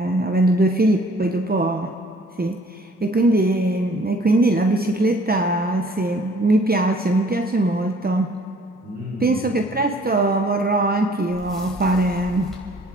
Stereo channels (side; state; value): both; normal; correlation 0.56